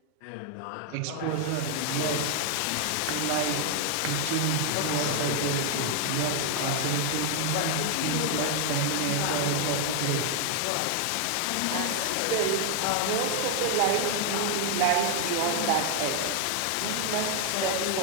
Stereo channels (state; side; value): different; both; correlation 0.00